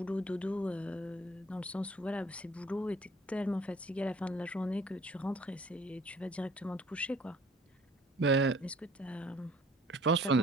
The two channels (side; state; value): both; normal; correlation 0.55